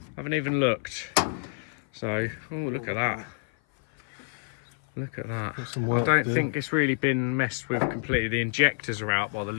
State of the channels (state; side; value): silent; right; 56 dB below the other